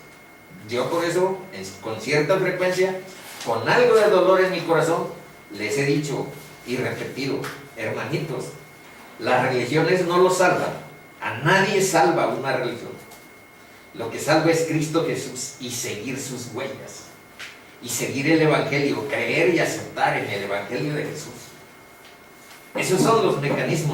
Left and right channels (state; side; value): identical; both; correlation 1.00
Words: Yo por eso, con cierta frecuencia, con algo de dolor en mi corazón, les he dicho, y repetido, hermanitos, las religiones no lo salvan. A nadie salva una religión. Lo que salva es Cristo Jesús y seguir sus huellas. Y seguir el Evangelio, creer y aceptar en el Evangelio de Jesús. Esos son los